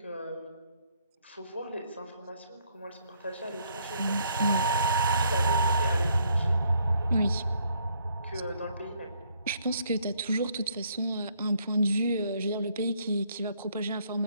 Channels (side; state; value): both; inverted; correlation -0.68